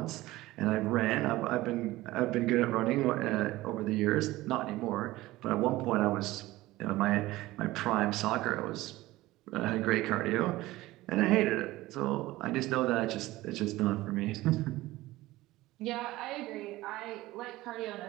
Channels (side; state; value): left; quieter; 17.9 dB